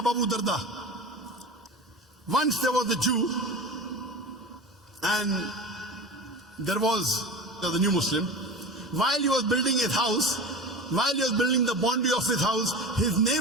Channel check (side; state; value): both; normal; correlation 0.31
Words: Abu Darda. Once there was a Jew, and there was the new Muslim. While he was building his house, while he was building the boundary of his house, his